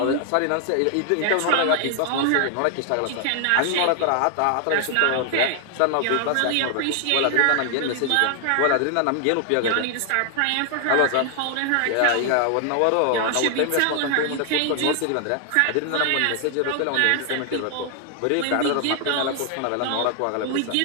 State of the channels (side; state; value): both; different; correlation 0.00